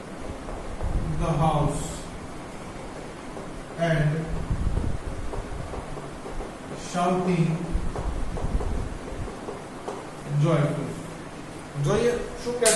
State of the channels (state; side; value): identical; both; correlation 1.00